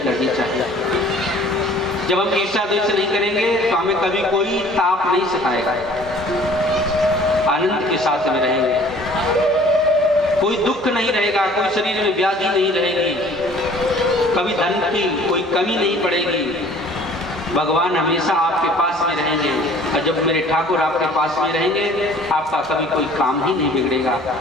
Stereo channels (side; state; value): both; normal; correlation 0.52